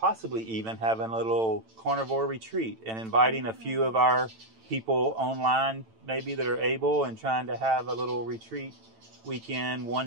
even having a little carnivore retreat and inviting a few of our people online maybe that are able, and trying to have a little retreat weekend one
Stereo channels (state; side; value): late; left; 9.0 ms